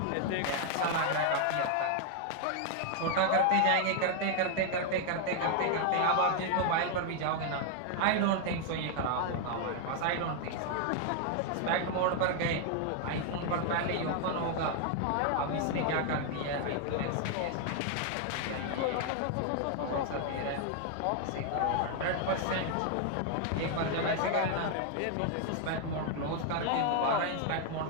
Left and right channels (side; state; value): both; different; correlation 0.00